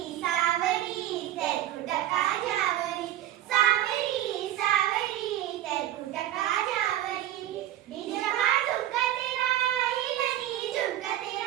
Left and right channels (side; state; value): left; quieter; 13.1 dB